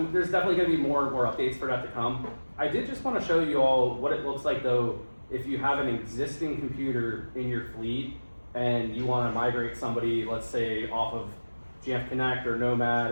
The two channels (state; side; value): inverted; both; correlation -1.00